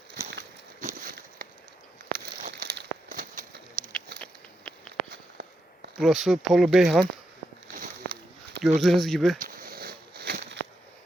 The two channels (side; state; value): both; normal; correlation 0.84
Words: Burası Polu Beyhan. Gördüğünüz gibi